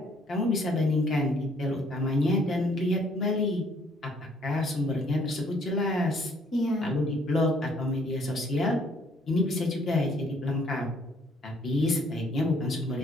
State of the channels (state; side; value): normal; both; correlation 0.63